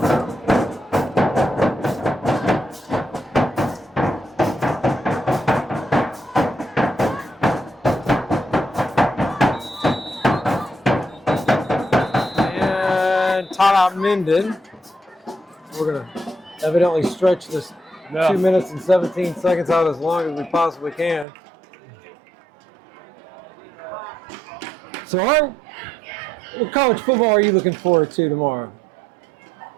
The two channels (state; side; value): drops out; left; at 21.2 s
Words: Timeout Minden. We're going to evidently stretch this 2 minutes and 17 seconds out as long as we possibly can. So what college football are you looking forward to tomorrow?